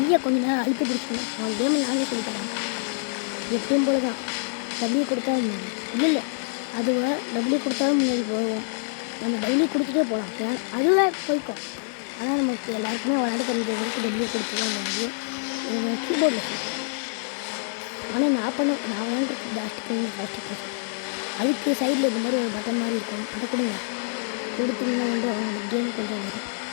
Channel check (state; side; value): silent; right; digital silence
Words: கொஞ்ச நேரம் அழுத்தி பிடிச்சணும். அவன் கேமில் நானே சொல்லி தரேன். எப்பயும் போல தான் டபிள்யூ கொடுத்தா இல்லை அதுவே டபிள்யூ கொடுத்தாலும் முன்னாடி போவோம். நம்ம டெய்லி கொடுத்துட்டே போகலாம். அதுவே போய்க்கும். ஆனால் நமக்கு எல்லாருக்குமே விளையாட தெரிஞ்சவங்களுக்கு டெய்லி கொடுத்து தான் முடியும். கீபோர்டில் சொல்லுவேன். ஆனால் நான் விளையாண்டுருக்கு பிளாஸ்டிக் அதுக்கு சைடில் இந்த மாதிரி ஒரு பட்டன் மாதிரி இருக்கும். அதை கொடுங்க. கொடுத்தீங்கன்னா அவங்க கேம் கொஞ்சம் வரும்.